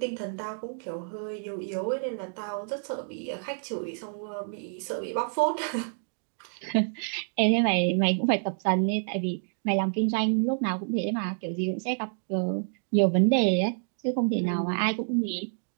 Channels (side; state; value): left; silent; digital silence